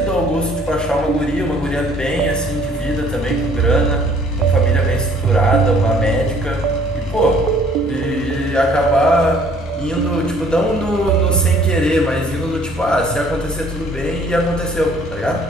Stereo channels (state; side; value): normal; both; correlation 0.58